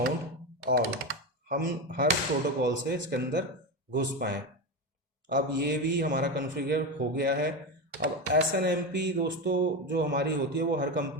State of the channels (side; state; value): both; normal; correlation 0.16